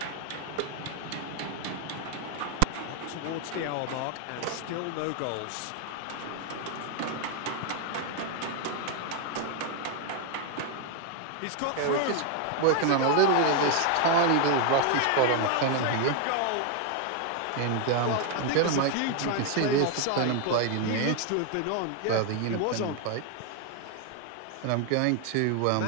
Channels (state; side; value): different; both; correlation 0.00